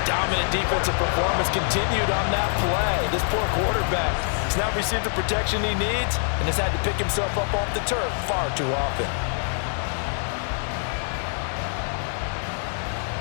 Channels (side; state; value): right; silent; 62 dB below the other